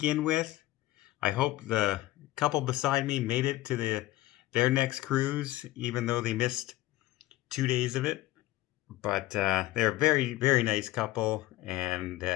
with. I hope the couple beside me made it to their next cruise, even though they missed 2 days of it. But they're a very, very nice couple, and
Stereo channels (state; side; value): quieter; right; 16.6 dB